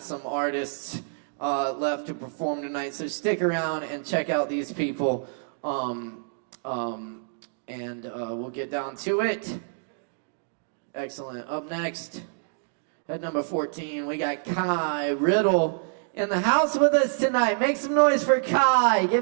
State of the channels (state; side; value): silent; left; digital silence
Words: artists left to perform tonight, so stick around and check out these people, and we'll get down to it. Excellent. Up next, at number 14, we got Kai Riddle in the house with us tonight. Make some noise for Kai.